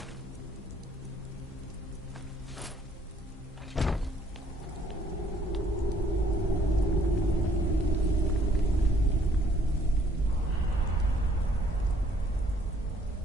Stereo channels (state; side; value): normal; both; correlation 0.64